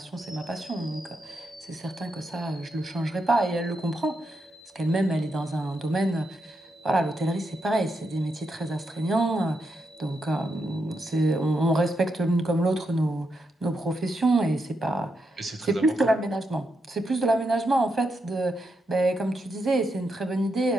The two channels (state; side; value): normal; both; correlation 0.83